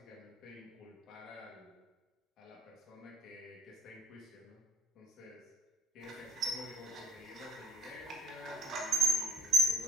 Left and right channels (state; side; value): normal; both; correlation 0.54